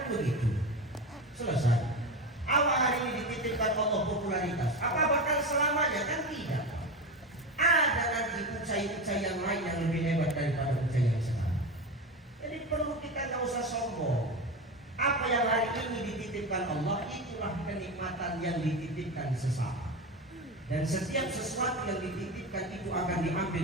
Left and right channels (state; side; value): normal; both; correlation 0.21